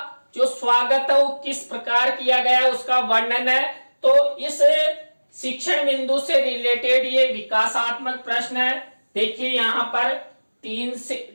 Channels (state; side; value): inverted; both; correlation -1.00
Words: जो स्वागत है वो किस प्रकार किया गया है उसका वर्णन है। तो इस शिक्षण बिंदु से रिलेटेड ये विकासात्मक प्रश्न है। देखिए, यहाँ पर